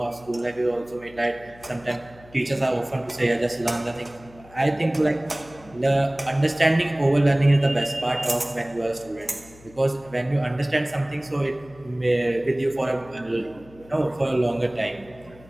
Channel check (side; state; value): left; noise; hum, 23 dB below the sound